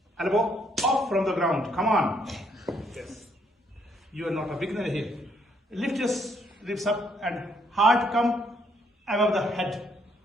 Elbow off from the ground. Come on. Yes. You are not a beginner here. Lift your ribs up and heart come above the head.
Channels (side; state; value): both; normal; correlation 0.70